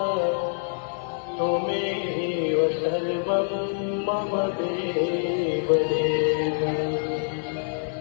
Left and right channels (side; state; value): right; silent; digital silence